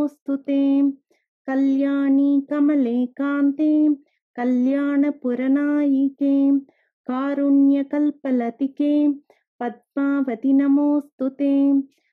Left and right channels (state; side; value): identical; both; correlation 1.00